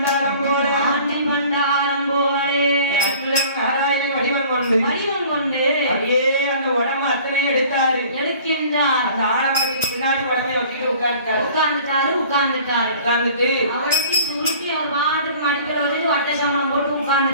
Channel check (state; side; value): inverted; both; correlation -0.48